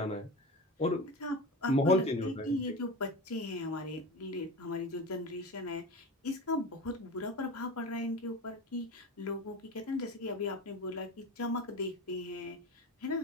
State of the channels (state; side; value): normal; both; correlation 0.28